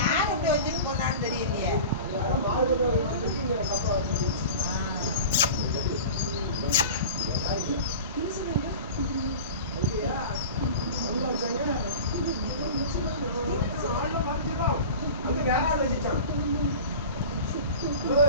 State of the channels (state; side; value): inverted; both; correlation -0.35